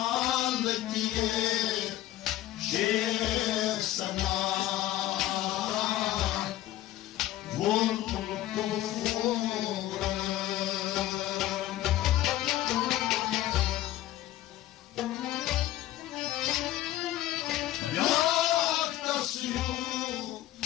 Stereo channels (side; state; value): right; quieter; 14.4 dB